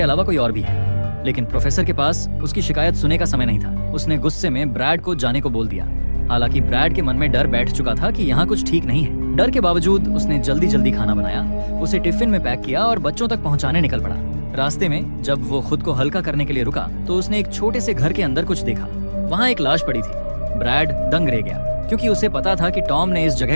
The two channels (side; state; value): both; inverted; correlation -1.00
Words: अलावा कोई और भी है। लेकिन प्रोफेसर के पास उसकी शिकायत सुनने का समय नहीं था। उसने गुस्से में ब्रैड को जाने को बोल दिया। हालांकि ब्रैड के मन में डर बैठ चुका था कि यहाँ कुछ ठीक नहीं है। डर के बावजूद उसने जल्दी जल्दी खाना बनाया, उसे टिफिन में पैक किया और बच्चों तक पहुंचाने निकल पड़ा। रास्ते में जब वो खुद को हल्का करने के लिए रुका तो उसने एक छोटे से घर के अंदर कुछ देखा। वहाँ एक लाश पड़ी थी। ब्रैड दंग रह गया क्योंकि उसे पता था कि टॉम ने इस